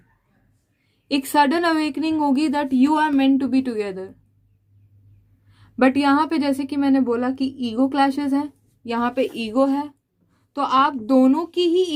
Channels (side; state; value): both; identical; correlation 1.00